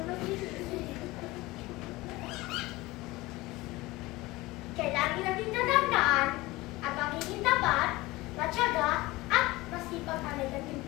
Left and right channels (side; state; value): right; quieter; 20.3 dB